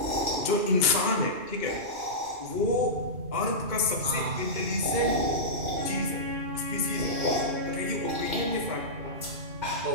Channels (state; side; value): late; left; 2.2 ms